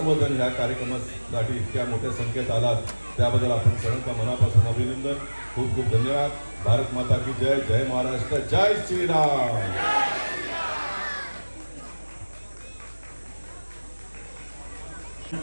या कार्यक्रमासाठी इतक्या मोठ्या संख्येत आलात त्याबद्दल आपण सर्वांचा मनापासून अभिनंदन. खूप खूप धन्यवाद. भारत माता की जय. जय महाराष्ट्र. जय श्रीराम.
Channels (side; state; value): both; inverted; correlation -1.00